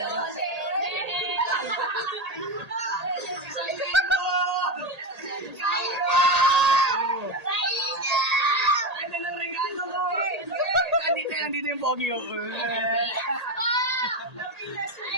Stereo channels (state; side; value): late; left; 1.8 ms